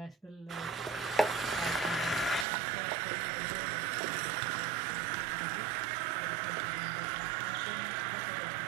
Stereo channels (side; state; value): left; drops out; at 2.5 s